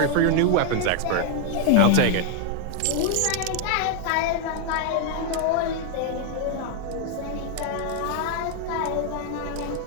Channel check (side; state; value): both; different; correlation 0.00